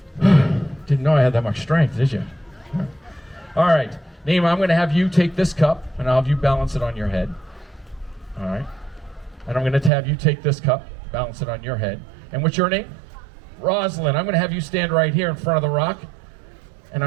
Didn't know I had that much strength, did you? All right, Naima, I'm going to have you take this cup, and I'll have you balance it on your head. All right. And I'm going to have you take this cup, balance it on your head. And what's your name? Rosalind. I'm going to have you stand right here in front of the rock, and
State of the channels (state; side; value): drops out; left; at 9.9 s